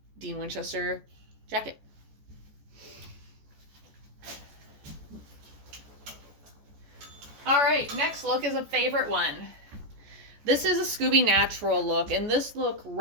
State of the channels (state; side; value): late; left; 14 ms